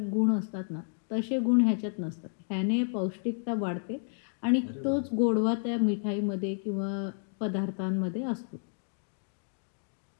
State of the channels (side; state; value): right; silent; digital silence